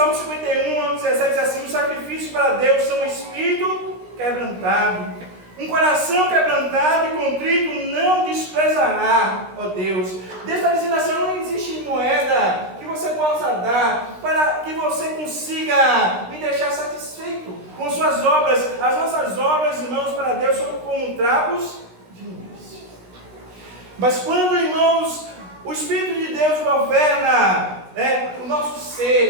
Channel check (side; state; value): left; late; 16 ms